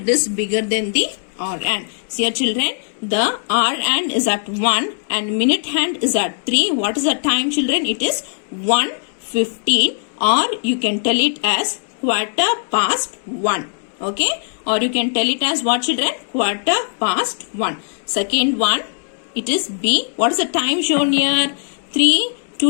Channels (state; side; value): silent; right; 66 dB below the other